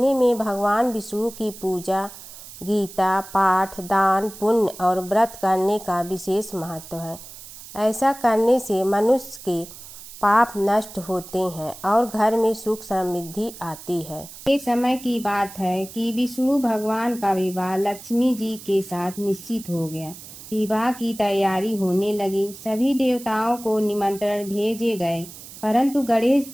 में भगवान विष्णु की पूजा, गीता पाठ, दान, पुण्य और व्रत करने का विशेष महत्व है। ऐसा करने से मनुष्य के पाप नष्ट होते हैं और घर में सुख समृद्धि आती है। एक समय की बात है कि विष्णु भगवान का विवाह लक्ष्मी जी के साथ निश्चित हो गया। विवाह की तैयारी होने लगी। सभी देवताओं को निमंत्रण भेजे गए, परंतु गणेश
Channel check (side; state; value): right; noise; hiss, 15 dB below the sound